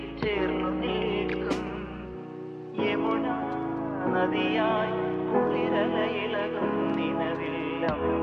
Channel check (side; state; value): both; identical; correlation 1.00